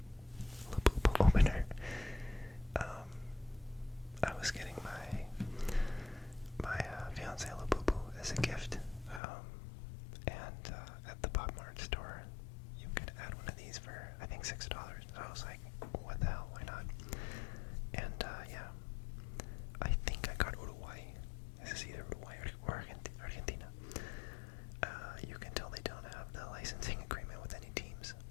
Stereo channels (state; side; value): drops out; right; at 9.2 s